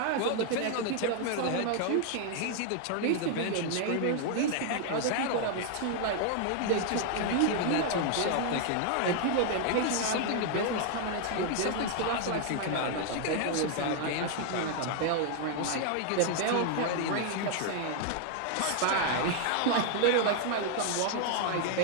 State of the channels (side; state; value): both; different; correlation 0.00